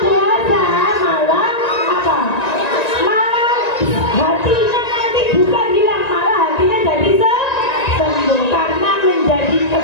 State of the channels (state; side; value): late; right; 1.9 ms